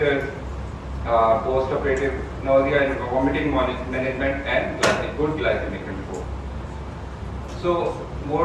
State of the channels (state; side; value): identical; both; correlation 1.00